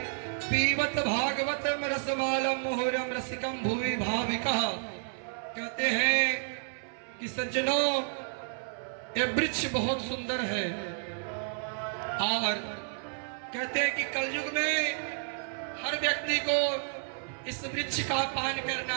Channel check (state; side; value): silent; left; 57 dB below the other